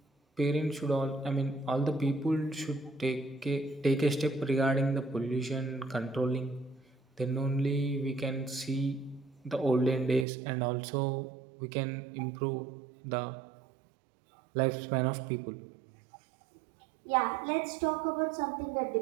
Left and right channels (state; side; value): drops out; left; at 10.2 s